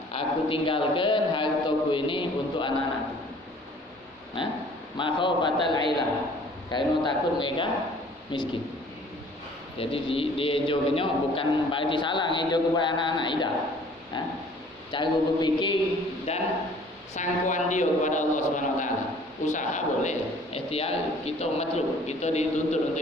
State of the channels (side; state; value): both; normal; correlation 0.53